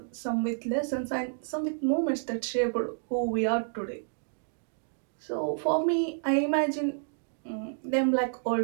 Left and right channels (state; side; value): silent; left; digital silence